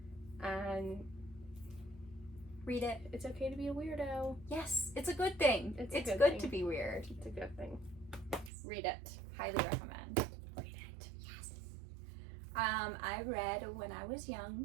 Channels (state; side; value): drops out; left; at 8.5 s